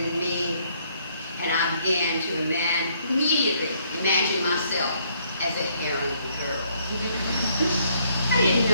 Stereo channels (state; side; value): inverted; both; correlation -0.68